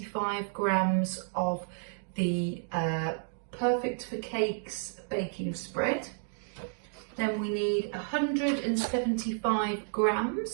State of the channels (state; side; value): silent; left; digital silence